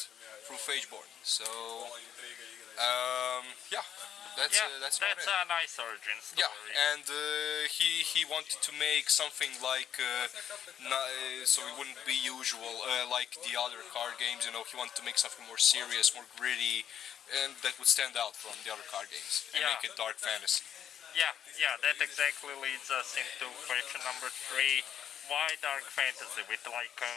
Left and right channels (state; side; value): quieter; right; 9.4 dB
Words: through Phageborn. So yeah, that's a nice origin story. Yeah, and he wanted to make something like so it wouldn't be usual like the other card games. You know, he wanted to make something more serious, more gritty, and that would stand out from the other card games and make it dark fantasy. Yeah, that exactly leads us into question number 3. Why dark fantasy with like a